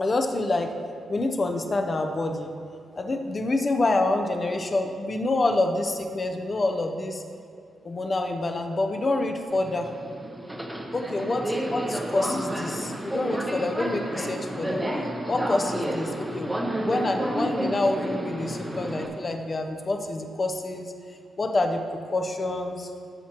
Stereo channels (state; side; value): normal; both; correlation 0.90